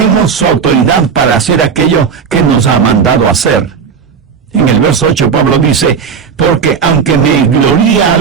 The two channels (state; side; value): quieter; left; 6.3 dB